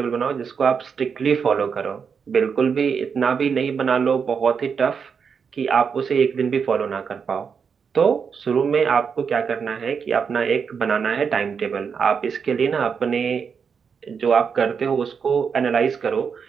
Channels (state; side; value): quieter; left; 6.3 dB